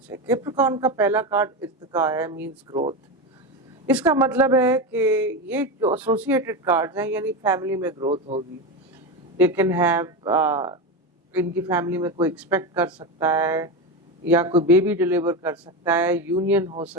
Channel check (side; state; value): both; normal; correlation 0.17